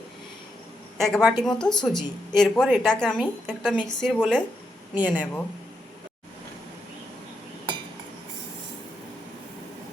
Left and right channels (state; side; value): normal; both; correlation 0.82